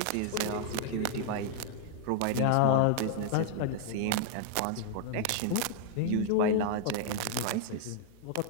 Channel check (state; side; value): different; both; correlation -0.01